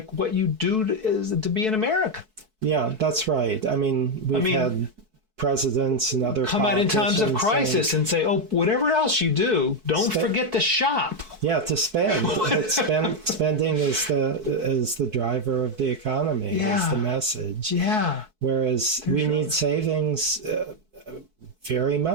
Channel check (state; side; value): late; left; 4.6 ms